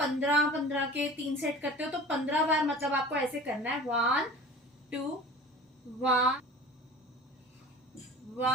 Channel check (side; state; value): both; normal; correlation 0.40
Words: के 3 सेट करते हो तो 15 बार मतलब आपको ऐसे करना है, 1 2 1